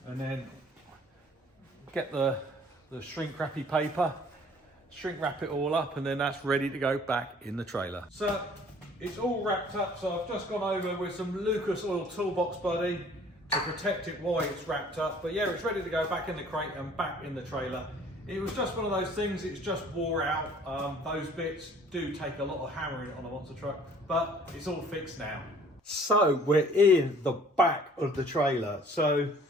and then get the shrink wrappy paper, shrink wrap it all up, and then that's ready to go back in the trailer. So it's all wrapped up, so I've just gone over with some Lucas Oil Toolbox Buddy to protect it while it's wrapped up. But yeah, it's ready to go back in the crate and back in the trailer. It was just one of those things, it's just wore out. Those bits do take a lot of hammering on a monster truck, but it's all fixed now. So we're in the back of the trailer. So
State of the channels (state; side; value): normal; both; correlation 0.54